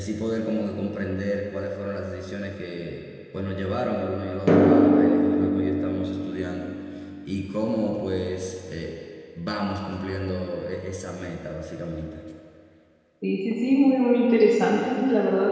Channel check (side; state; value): both; identical; correlation 1.00